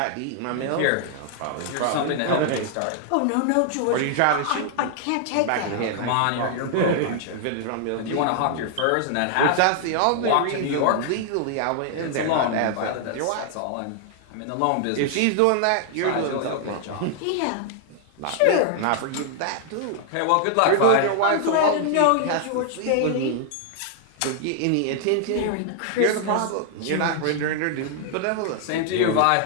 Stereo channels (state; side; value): different; both; correlation 0.00